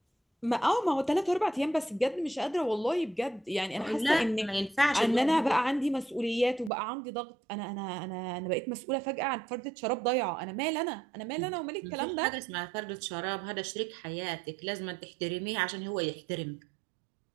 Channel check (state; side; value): drops out; left; at 6.7 s